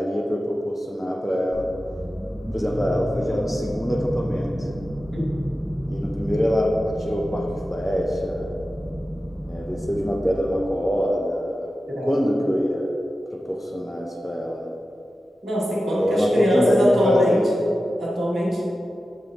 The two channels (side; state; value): both; normal; correlation 0.93